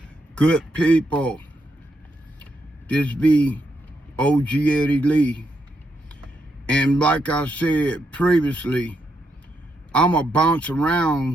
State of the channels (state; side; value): normal; both; correlation 0.80